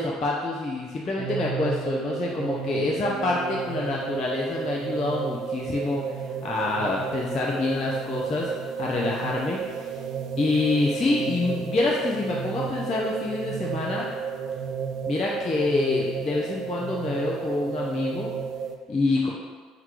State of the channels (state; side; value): normal; both; correlation 0.70